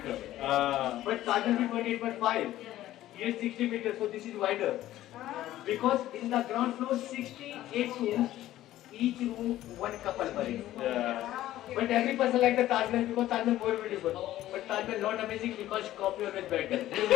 But Taj Mahal is 28.5. Here 60 meter. So this is wider. Because in the ground floor 68 rooms. Each room one couple buried. But every person like the Taj Mahal because Taj Mahal more beautiful. But Taj Mahal not amazing because copy always better.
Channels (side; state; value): right; quieter; 14.2 dB